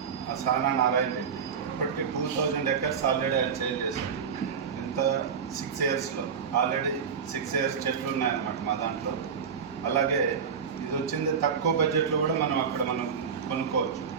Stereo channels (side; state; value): left; quieter; 6.6 dB